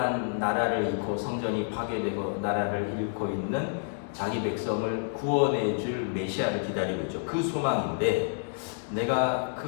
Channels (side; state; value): right; silent; digital silence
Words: 나라를 잃고 성전이 파괴되고 나라를 잃고 있는 자기 백성을 구원해줄 메시아를 기다리고 있죠. 그 소망인데 내가